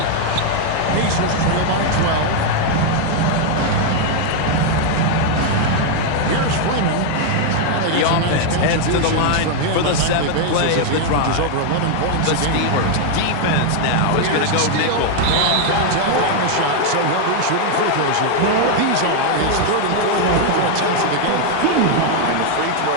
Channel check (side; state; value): both; different; correlation 0.00